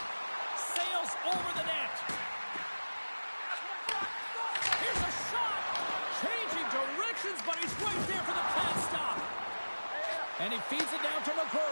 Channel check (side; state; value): both; inverted; correlation -1.00